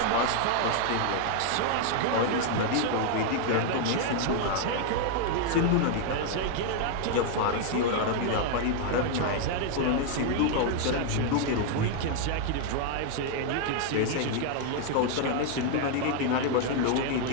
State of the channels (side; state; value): both; different; correlation 0.00